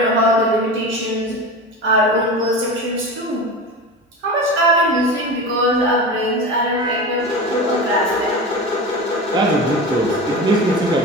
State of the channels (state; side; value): normal; both; correlation 0.28